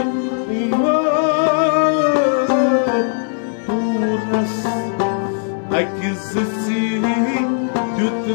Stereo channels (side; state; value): right; silent; digital silence